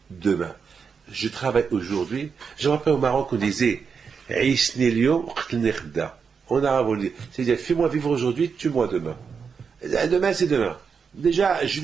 demain. Je travaille aujourd'hui. Je me rappelle au Maroc, on disait en arabe, on dit, c'est-à-dire, fais-moi vivre aujourd'hui, tue-moi demain. Demain, c'est demain. Déjà, je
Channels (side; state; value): left; quieter; 5.9 dB